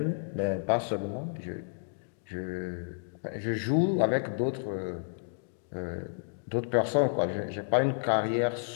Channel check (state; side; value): silent; right; digital silence